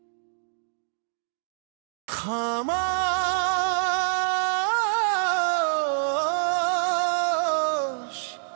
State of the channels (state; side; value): silent; left; digital silence